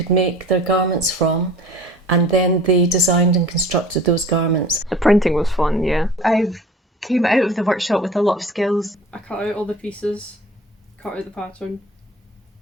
make their garments from, and then they designed and constructed those garments. The printing was fun, yeah. I came out of the workshop with a lot of skills. I cut out all the pieces, cut out the pattern,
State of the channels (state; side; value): normal; both; correlation 0.44